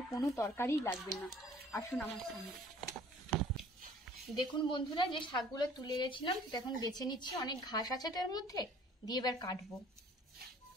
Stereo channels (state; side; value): normal; both; correlation 0.53